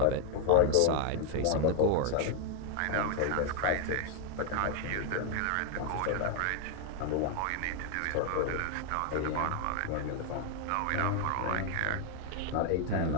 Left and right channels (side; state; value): both; different; correlation 0.00